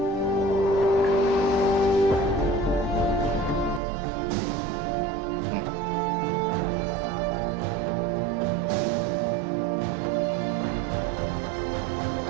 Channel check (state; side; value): drops out; left; at 3.8 s